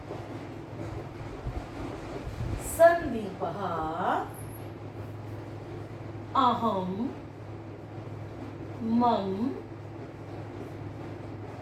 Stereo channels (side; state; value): both; identical; correlation 1.00